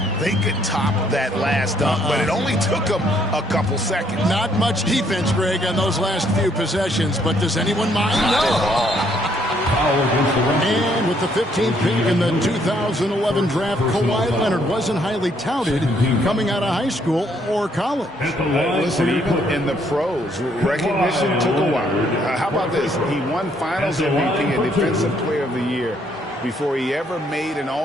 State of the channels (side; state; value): both; normal; correlation 0.69